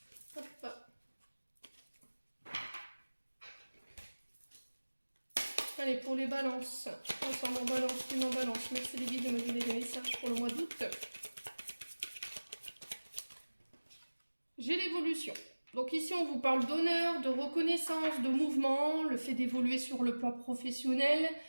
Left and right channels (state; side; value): inverted; both; correlation -1.00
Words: Hop. Allez, pour les balances. Ensemble en balance, une en balance. Merci les guides de me donner des messages pour le mois d'août. J'ai l'évolution. Donc ici, on vous parle d'honneur, de reconnaissance, de mouvement, le fait d'évoluer sur le plan professionnel,